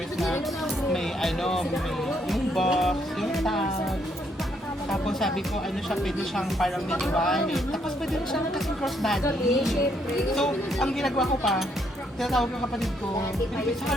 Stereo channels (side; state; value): both; normal; correlation 0.72